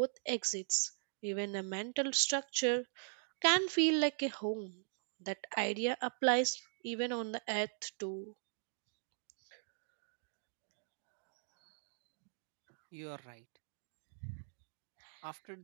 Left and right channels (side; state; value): left; silent; digital silence